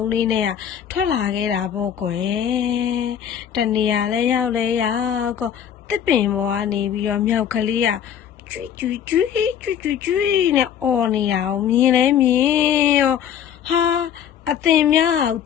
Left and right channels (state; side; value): quieter; right; 9.2 dB